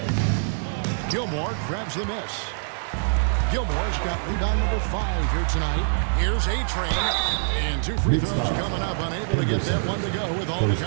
Gilmore grabs the miss. Gilmore's got rebound number 5 here tonight. Here's A-Train. And 2 free throws coming up. Unable to get that one to go with all the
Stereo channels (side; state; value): left; silent; digital silence